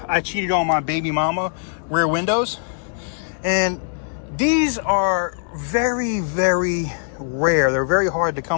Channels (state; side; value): silent; right; 63 dB below the other